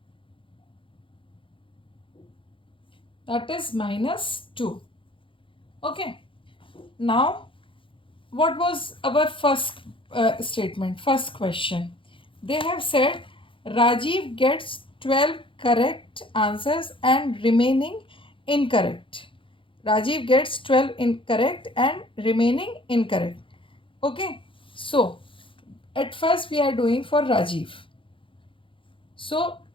That is minus 2. Okay. Now, what was our first statement, first question? They have said Rajiv gets 12 correct answers and remaining incorrect. Rajiv gets 12 incorrect and remaining incorrect. Okay. So, at first we are doing for Rajiv. So,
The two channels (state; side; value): late; right; 0.25 ms